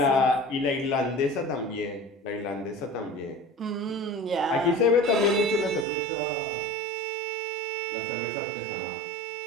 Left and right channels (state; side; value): drops out; left; at 5.9 s